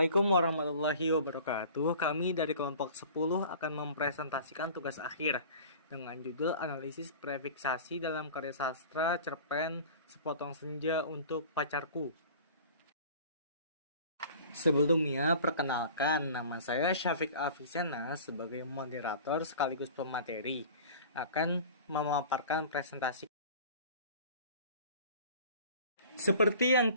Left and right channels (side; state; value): both; inverted; correlation -0.43